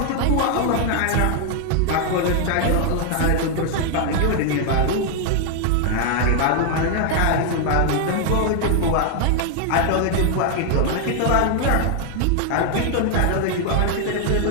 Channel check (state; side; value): different; both; correlation 0.01